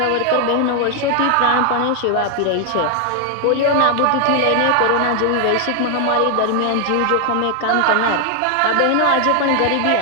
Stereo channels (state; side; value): different; both; correlation 0.00